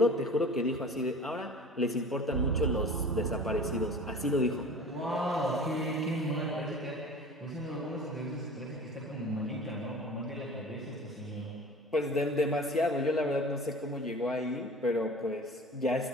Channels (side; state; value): both; normal; correlation 0.40